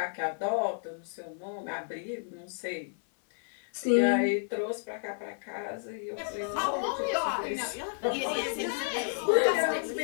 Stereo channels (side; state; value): right; silent; 57 dB below the other